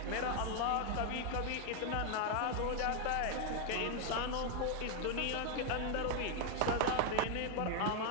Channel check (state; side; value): different; both; correlation 0.00